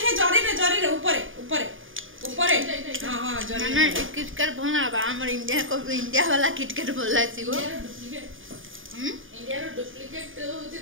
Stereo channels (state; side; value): late; left; 0.58 ms